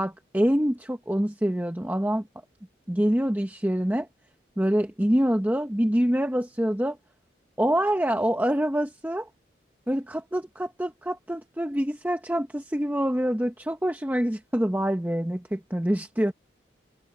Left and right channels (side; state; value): both; normal; correlation 0.96